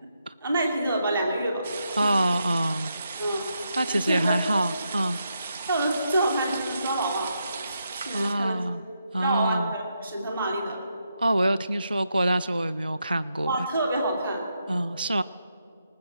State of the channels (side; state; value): both; inverted; correlation -0.82